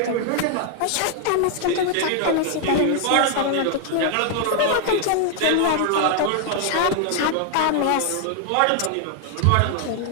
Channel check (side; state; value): both; different; correlation 0.00